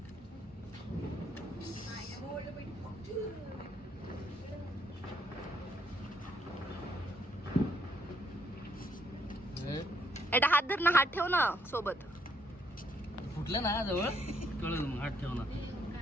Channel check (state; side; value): normal; both; correlation 0.72